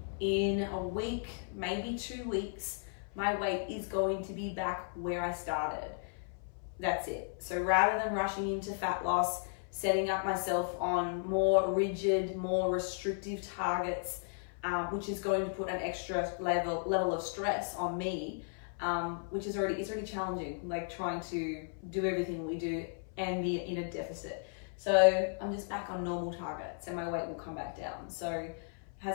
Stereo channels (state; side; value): silent; right; 55 dB below the other